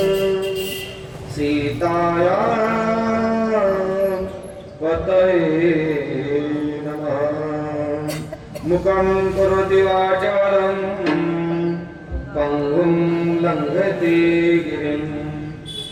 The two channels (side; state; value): both; identical; correlation 1.00